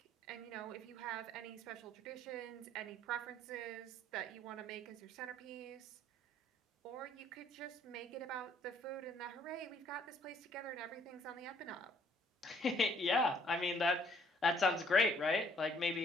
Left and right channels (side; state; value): both; normal; correlation 0.63